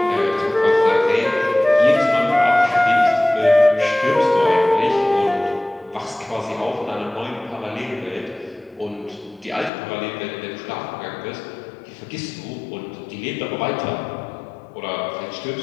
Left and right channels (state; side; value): drops out; right; at 9.7 s